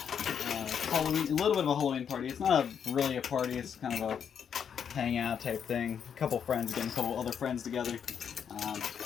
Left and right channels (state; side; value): quieter; right; 7.7 dB